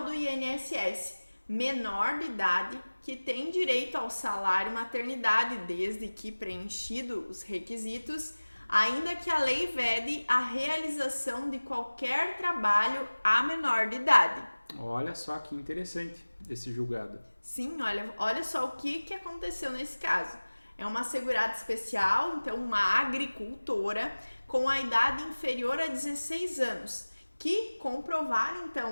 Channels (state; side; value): inverted; both; correlation -1.00